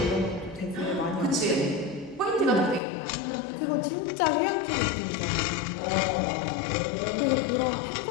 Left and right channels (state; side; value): drops out; right; at 2.8 s